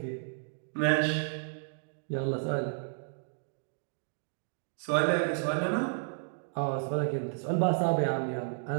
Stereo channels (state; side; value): silent; left; digital silence